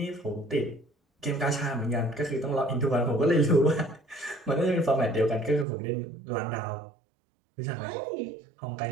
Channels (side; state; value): left; drops out; at 5.7 s